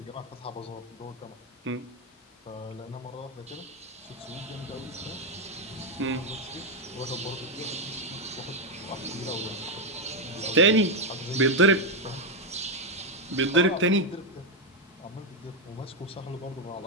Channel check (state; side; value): normal; both; correlation 0.05